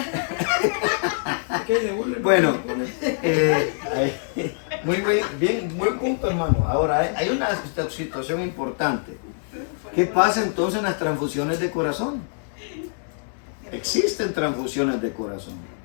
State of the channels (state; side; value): silent; right; 62 dB below the other